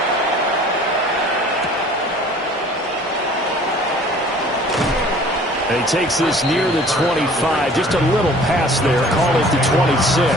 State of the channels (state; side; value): normal; both; correlation 0.50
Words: And he takes this near the 25, just a little pass there, call it the